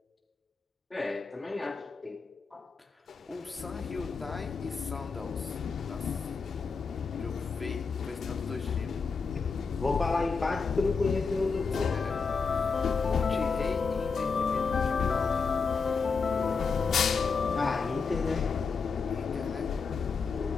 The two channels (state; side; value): quieter; right; 5.0 dB